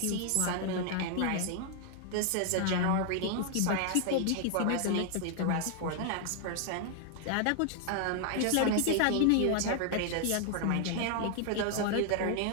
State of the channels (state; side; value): different; both; correlation 0.00